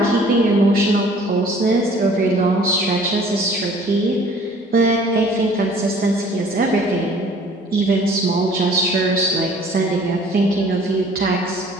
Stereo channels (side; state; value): both; normal; correlation 0.52